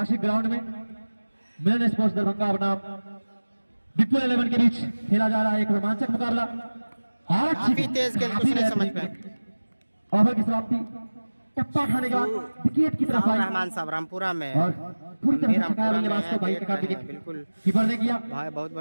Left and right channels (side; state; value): both; inverted; correlation -1.00